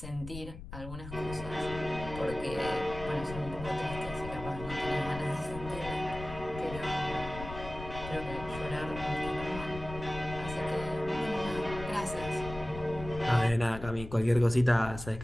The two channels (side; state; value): left; noise; rumble, 11 dB below the sound